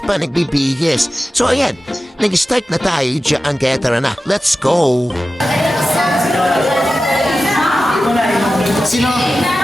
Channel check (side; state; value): both; normal; correlation 0.94